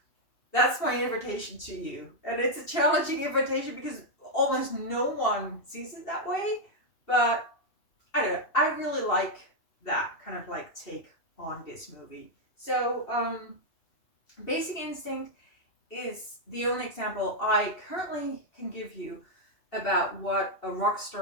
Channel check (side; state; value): right; late; 2.7 ms